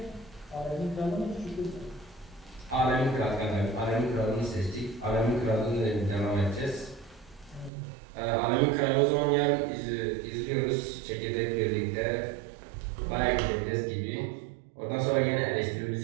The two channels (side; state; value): left; drops out; at 7.7 s